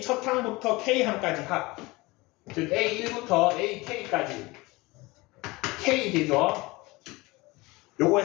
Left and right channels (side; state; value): right; quieter; 22.7 dB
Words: 첫 항부터 K항까지 합. 즉 A1부터 AK까지 K 되죠?